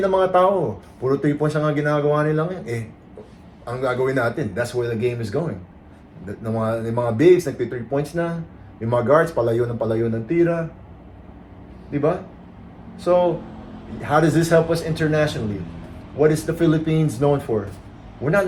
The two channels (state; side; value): identical; both; correlation 1.00